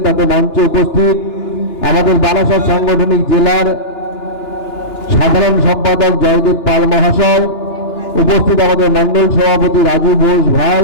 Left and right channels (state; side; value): late; right; 2.9 ms